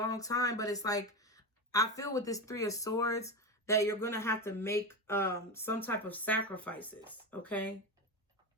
time. But it's like, I feel with this Three of Swords that you're going to have to make some type of sacrifices, okay?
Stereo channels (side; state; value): both; normal; correlation 0.18